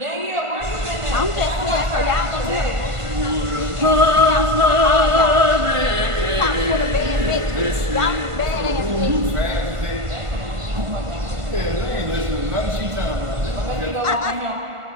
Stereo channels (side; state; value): left; late; 1.5 ms